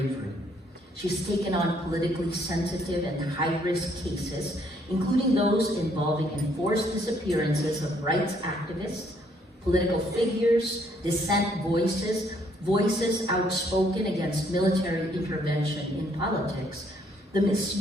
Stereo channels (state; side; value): normal; both; correlation 0.67